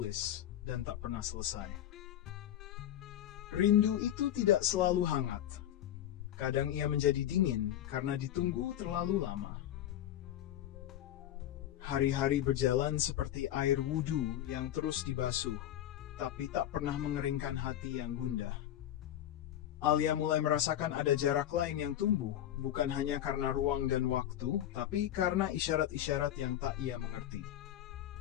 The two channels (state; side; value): quieter; right; 11.9 dB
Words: dan tak pernah selesai. Rindu itu tidak selalu hangat. Kadang ia menjadi dingin karena ditunggu terlalu lama. Hari-hari berjalan seperti air wudhu yang terus dibasuh, tapi tak pernah mengeringkan hati yang gundah. Alia mulai merasakan ada jarak lain yang tumbuh, bukan hanya karena ruang dan waktu, tapi karena isyarat-isyarat yang tak ia mengerti.